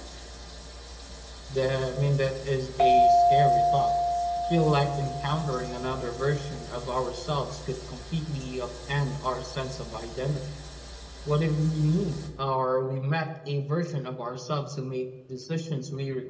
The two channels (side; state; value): both; identical; correlation 1.00